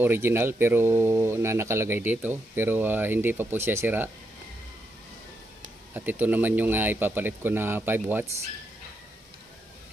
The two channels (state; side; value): normal; both; correlation 0.81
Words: pero nakalagay dito, pero hindi pa po siya sira. At ito naman yung ipapalit ko na 5 watts.